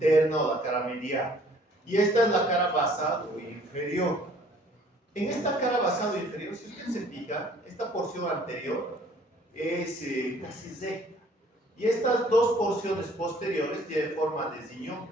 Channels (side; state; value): both; normal; correlation 0.57